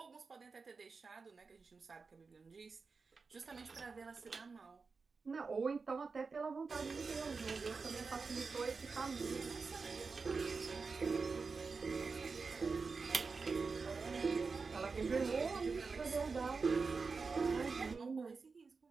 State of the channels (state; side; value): quieter; left; 4.6 dB